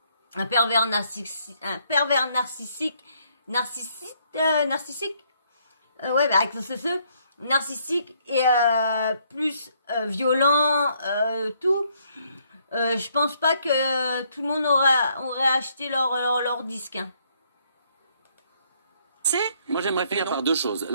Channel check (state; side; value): inverted; both; correlation -0.69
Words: un pervers narcissique, narcissique, ouais, bah, avec ce narcissique et plus violent, tout. Je pense pas que tout le monde aurait acheté leur disque. Hein. Moi, j'aimerais finir par deux choses.